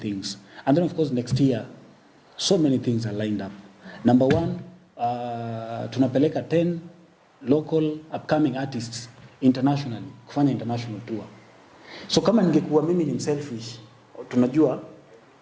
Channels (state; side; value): identical; both; correlation 1.00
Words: And then of course next year, so many things are lined up. Number one, tunapeleka 10 local upcoming artists internationally, kufanya international tour. So kama ningekuwa mimi ni selfish, tunajua,